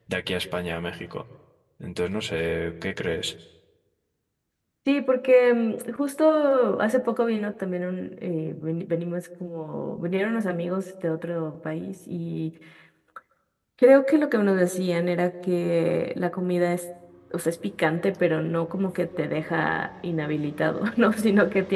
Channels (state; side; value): identical; both; correlation 1.00